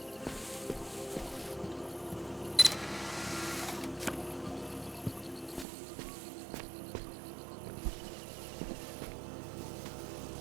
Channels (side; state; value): left; drops out; at 5.7 s